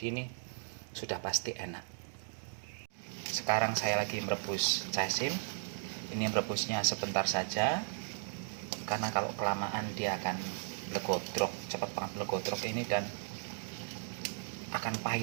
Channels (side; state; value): left; silent; digital silence